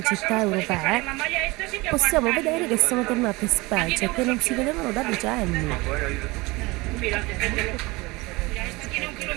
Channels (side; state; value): left; quieter; 23.1 dB